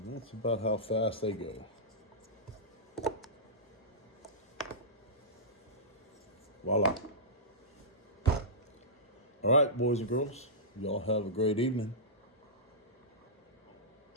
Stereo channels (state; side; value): normal; both; correlation -0.16